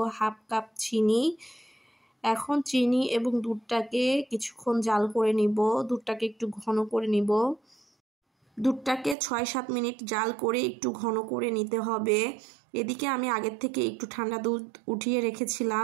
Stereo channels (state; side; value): drops out; left; at 9.2 s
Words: হাফ কাপ চিনি। এখন চিনি এবং দুধটাকে কিছুক্ষণ জাল করে নিব। দুধটাকে একটু ঘন করে নিব। দুধটাকে ৬-৭ মিনিট জাল করে একটু ঘন করে নিতে হবে। এদিকে আমি আগের থেকে একটু ঠান্ডা দুধ উঠিয়ে